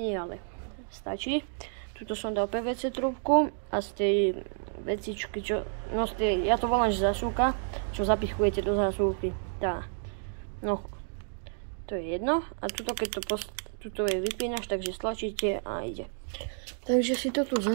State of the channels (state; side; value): silent; left; digital silence